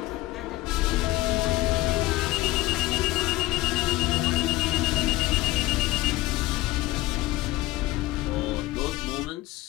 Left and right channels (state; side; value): quieter; right; 17.9 dB